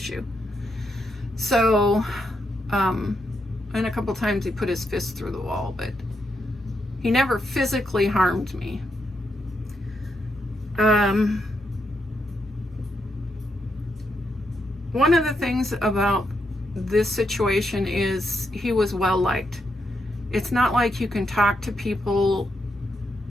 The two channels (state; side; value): normal; both; correlation 0.81